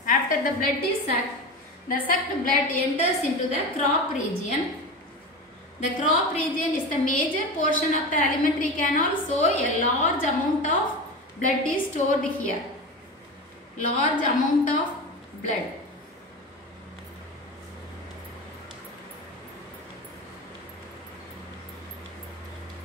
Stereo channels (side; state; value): both; normal; correlation 0.26